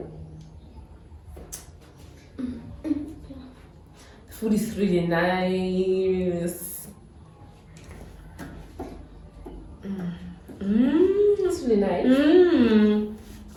The food is really nice. Mmm. That's really nice. Mmm.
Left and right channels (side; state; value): both; identical; correlation 1.00